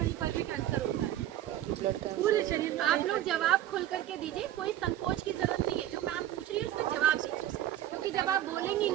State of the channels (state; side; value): quieter; left; 12.7 dB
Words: पर भी कैंसर होता है, ब्लड का। पूरे शरीर में। आप लोग जवाब खुल करके दीजिए, कोई संकोच की जरूरत नहीं है। जो मैम पूछ रही है उसका जवाब दीजिए, क्योंकि जब आप बोलेंगी